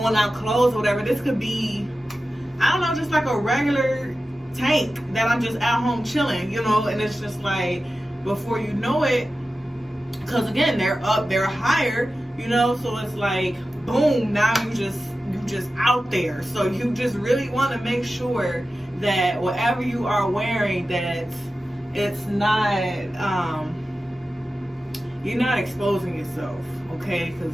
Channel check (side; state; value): both; normal; correlation 0.94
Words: out clothes or whatever. This could be, I don't know, just like a regular tank that I'm just at home chilling, you know, and it's just like, before you know it, because again, they're up, they're higher, you know, so it's like boom, now you just out there. So you just really want to make sure that whatever you are wearing, that it's not you're not exposing yourself, okay?